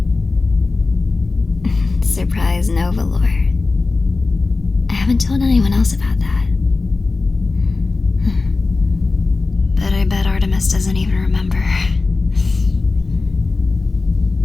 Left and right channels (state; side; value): quieter; right; 3.7 dB